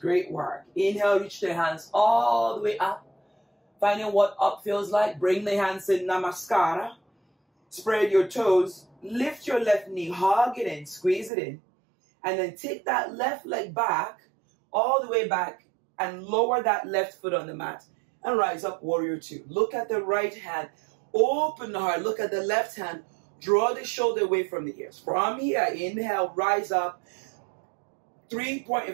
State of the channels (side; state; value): left; drops out; at 11.3 s